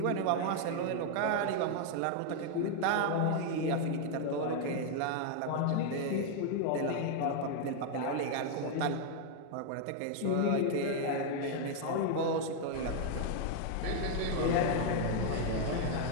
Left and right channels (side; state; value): both; different; correlation 0.00